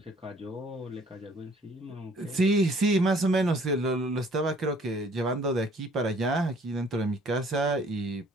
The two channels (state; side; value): normal; both; correlation 0.58